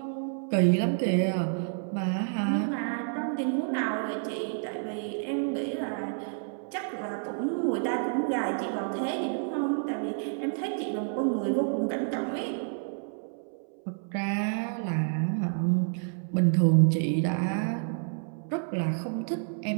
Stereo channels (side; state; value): left; silent; 58 dB below the other